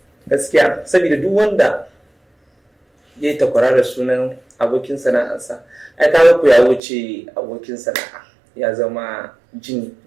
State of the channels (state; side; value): drops out; left; at 6.8 s